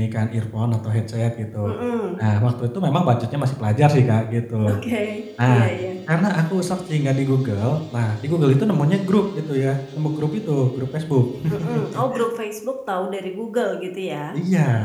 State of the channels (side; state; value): both; identical; correlation 1.00